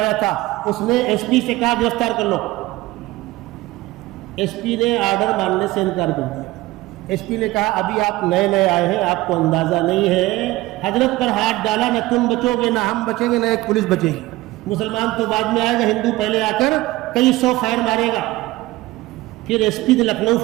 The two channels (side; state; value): left; quieter; 18.8 dB